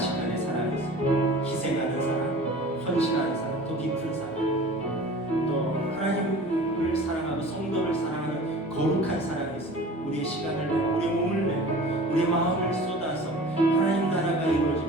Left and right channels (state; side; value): normal; both; correlation 0.41